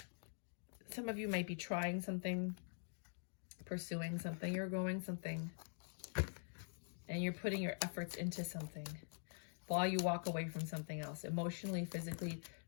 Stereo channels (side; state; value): right; silent; digital silence